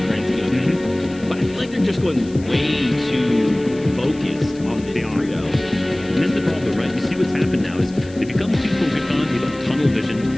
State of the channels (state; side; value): noise; left; hiss, 23 dB below the sound